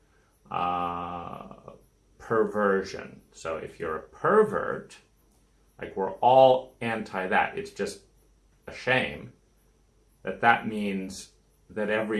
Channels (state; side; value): identical; both; correlation 1.00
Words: perversion. So if you're a pervert, like we're all anti that. It's just a shame that that means that